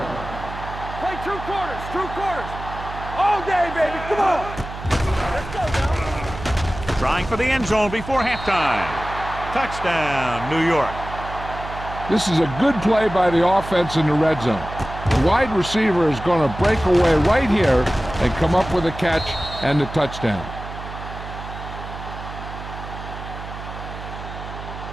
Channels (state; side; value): noise; right; hum, 11 dB below the sound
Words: Play 2 quarters, 2 quarters. All day, baby. Come on. Let's go, now. Trying for the end zone before halftime. Touchdown, New York. This is a good play by the offense in the red zone. The wide receiver is going to break away right here and come up with a catch and the touchdown.